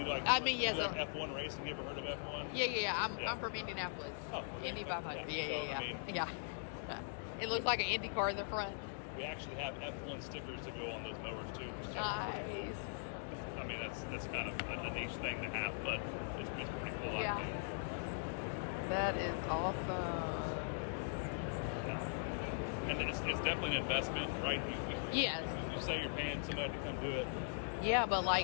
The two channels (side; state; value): right; silent; digital silence